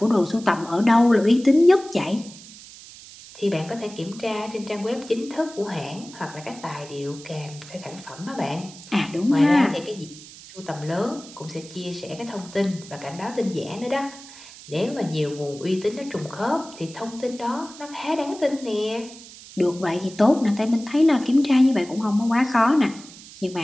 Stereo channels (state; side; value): noise; right; hiss, 18 dB below the sound